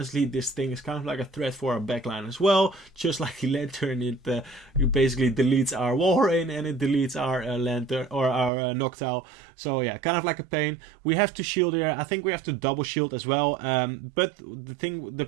this thing is kind of like a threat for our backline as well. Just like the lantern, it basically deletes our Warren and it deletes our lantern or our Noctowl. So yeah, kind of like a pain. We have to shield here. I think we have to double shield as well. But the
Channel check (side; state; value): left; drops out; at 8.5 s